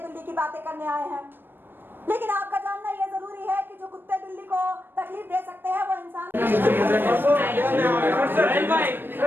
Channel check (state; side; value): late; left; 0.097 ms